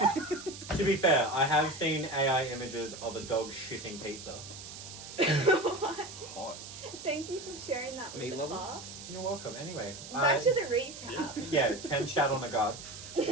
To be fair, I have seen AI images of a dog shitting pizza. What? Hot. Thank you for sharing that with Meat the levels? class. You're welcome. Anyway, Back to the recap. yeah, 10 shat on a guard.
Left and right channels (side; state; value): right; noise; hiss, 12 dB below the sound